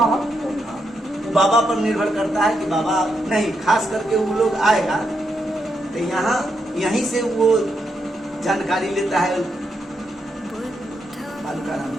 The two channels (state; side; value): normal; both; correlation 0.81